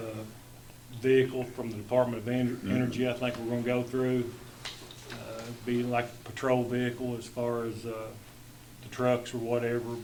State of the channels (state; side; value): identical; both; correlation 1.00